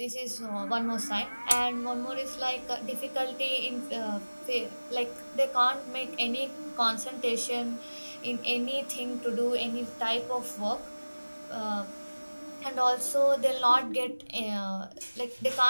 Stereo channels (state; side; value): inverted; both; correlation -1.00